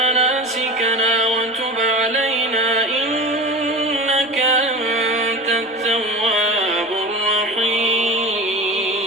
وتب علينا إنك أنت التواب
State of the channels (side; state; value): both; normal; correlation 0.32